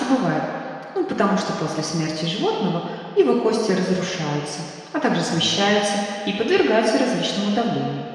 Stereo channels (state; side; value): identical; both; correlation 1.00